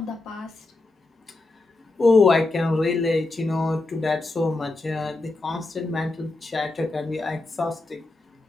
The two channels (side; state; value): right; quieter; 3.1 dB